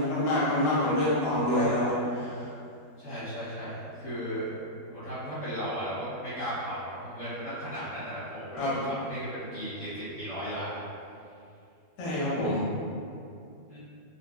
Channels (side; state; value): right; late; 12 ms